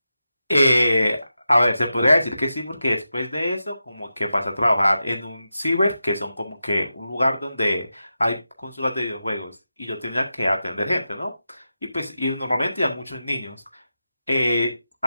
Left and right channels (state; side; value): inverted; both; correlation -0.90